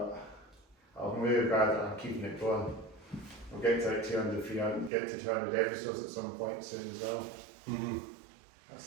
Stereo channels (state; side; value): drops out; left; at 4.9 s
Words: I'm really glad that I'm keeping it going. We'll get to like 200, 300, get to 200 episodes at some point soon as well. Mm-hmm. That's